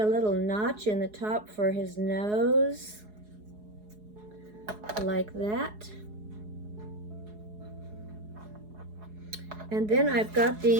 little notch in the top for his nose, like that. And then I've got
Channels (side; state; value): left; late; 4.8 ms